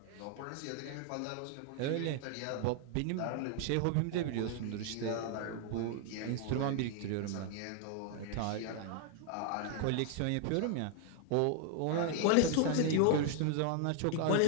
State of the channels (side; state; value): both; different; correlation 0.00